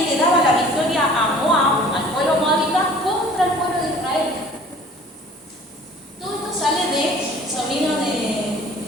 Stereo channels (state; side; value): normal; both; correlation 0.49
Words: le daba la victoria a Moab, al pueblo moabita, contra el pueblo de Israel. Todo esto sale de sobrino